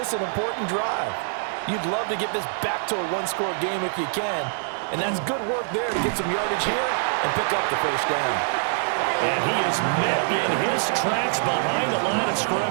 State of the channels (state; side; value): silent; left; 62 dB below the other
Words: an important drive. You'd love to get this back to a one-score game if you can, and that's good work there to get some yardage here and pick up the first down. And he is met in his tracks behind the line of